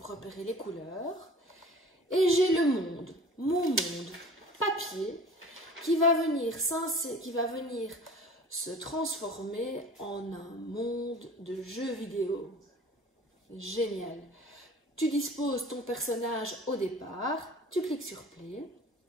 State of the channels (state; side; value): normal; both; correlation 0.44